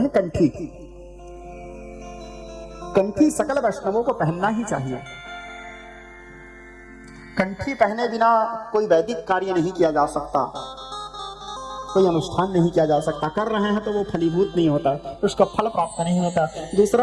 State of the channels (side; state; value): both; identical; correlation 1.00